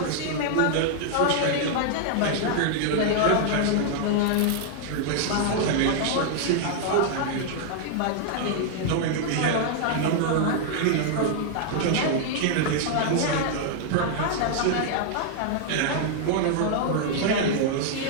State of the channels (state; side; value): different; both; correlation 0.00